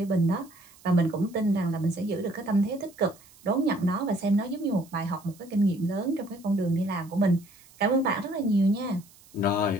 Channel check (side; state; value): right; noise; hiss, 26 dB below the sound